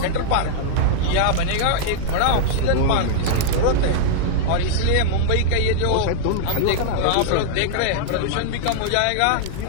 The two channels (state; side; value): different; both; correlation -0.01